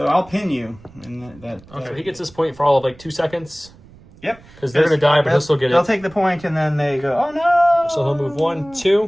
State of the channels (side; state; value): right; noise; rumble, 24 dB below the sound